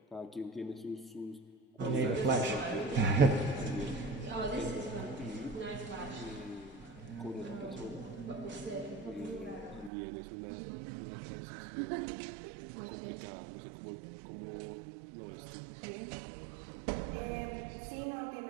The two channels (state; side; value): drops out; left; at 9.9 s